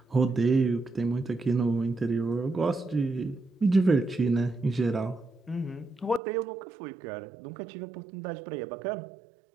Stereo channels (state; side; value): drops out; left; at 6.2 s